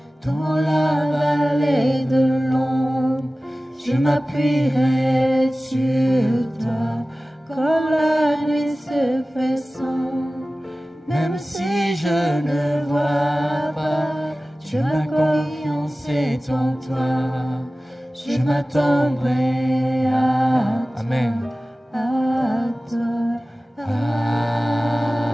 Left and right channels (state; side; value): normal; both; correlation 0.96